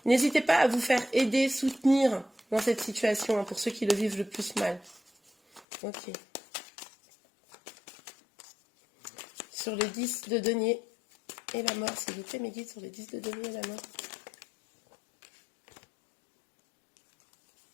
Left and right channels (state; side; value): drops out; right; at 5.7 s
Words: n'hésitez pas à vous faire aider, soutenir dans cette situation, hein, pour ceux qui le vivent le plus mal. Ok. Sur le 10 de denier et la mort, s'il vous plaît, mes guides, sur le 10 de denier et la mort.